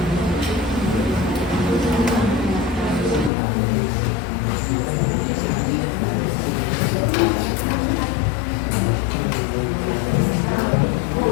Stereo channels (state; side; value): drops out; right; at 3.3 s